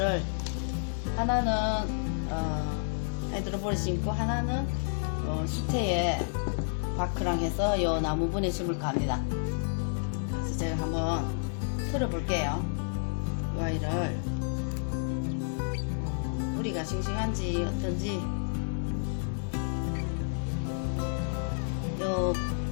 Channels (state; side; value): silent; right; digital silence